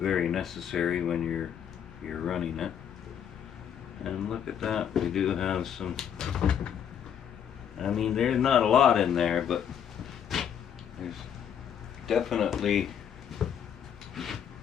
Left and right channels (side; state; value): right; quieter; 8.7 dB